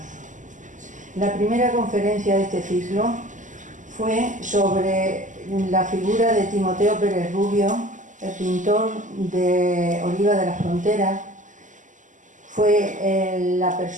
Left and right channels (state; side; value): late; left; 0.37 ms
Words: La primera conferencia de este ciclo fue sobre la figura de Timoteo Pérez Rubio, el pintor de Oliva de la Frontera. Fue la